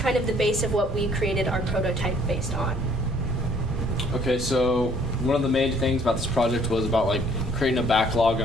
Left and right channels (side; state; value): both; normal; correlation 0.60